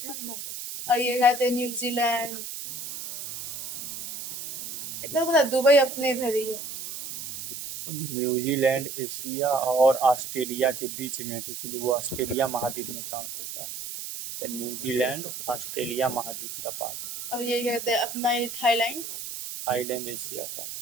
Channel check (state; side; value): noise; right; hiss, 8 dB below the sound